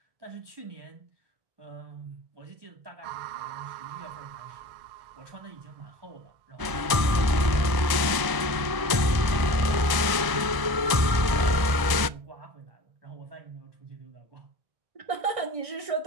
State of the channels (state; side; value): late; left; 1.0 ms